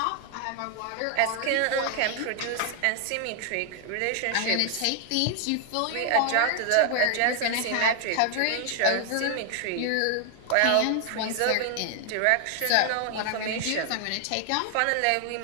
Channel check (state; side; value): different; both; correlation 0.00